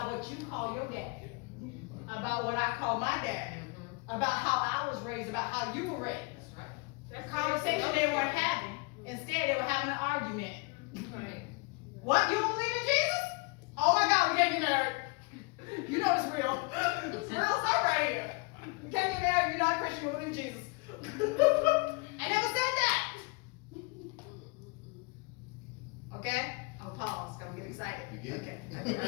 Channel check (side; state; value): right; quieter; 29.7 dB